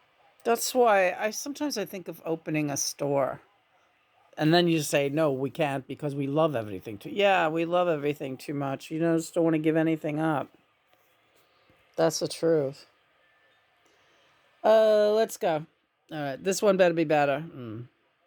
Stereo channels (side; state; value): both; identical; correlation 1.00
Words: That's why sometimes I think of opening a store. And then you say, no, we can't because we love everything too. Yeah, we love everything too much. You just don't want to give anything up. That's the truth. Let's go. All right, this one better be better.